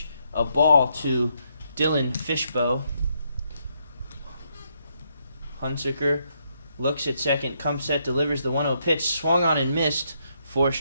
a ball to Dylan Fishbow. Hunsicker looks at second, comes set, delivers the 1-0 pitch, swung on and missed for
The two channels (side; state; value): both; inverted; correlation -0.76